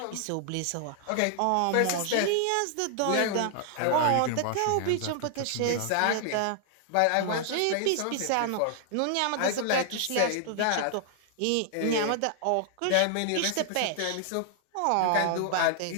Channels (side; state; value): both; different; correlation -0.01